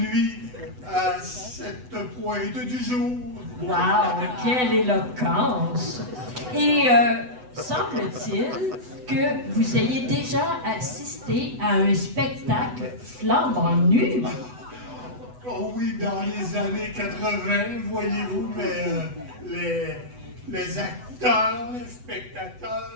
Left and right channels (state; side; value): late; left; 8.0 ms